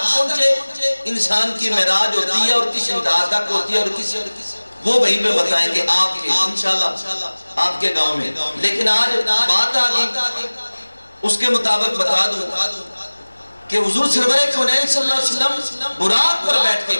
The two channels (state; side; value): inverted; both; correlation -1.00